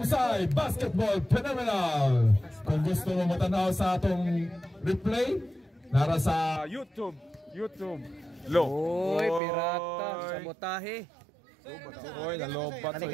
Basketball Phenomenal. Kung gusto mo matanaw sa atong replay, nara sa YouTube. Oy, pirata, sabotahe. Oy, nalobat.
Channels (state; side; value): drops out; left; at 9.4 s